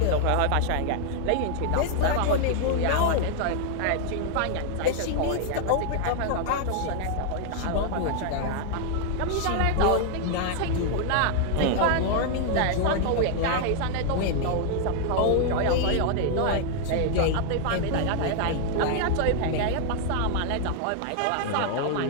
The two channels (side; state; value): both; different; correlation 0.00